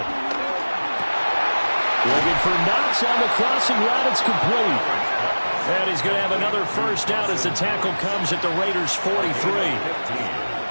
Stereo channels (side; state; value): both; inverted; correlation -1.00